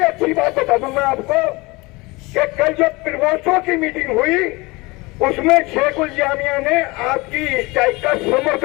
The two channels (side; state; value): right; quieter; 23.9 dB